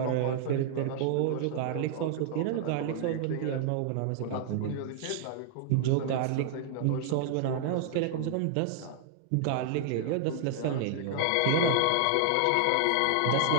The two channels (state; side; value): different; both; correlation 0.00